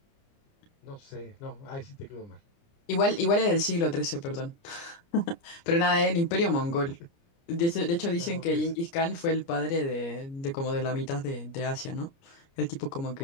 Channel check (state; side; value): late; right; 29 ms